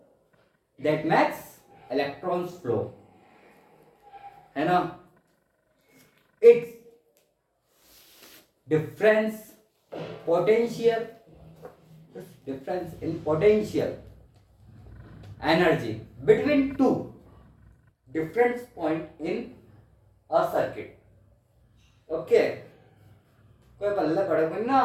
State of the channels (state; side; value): identical; both; correlation 1.00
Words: that makes electrons flow, है ना। It's difference potential difference in potential energy between two different point in a circuit. Okay, कोई पल्ले पड़े कोई ना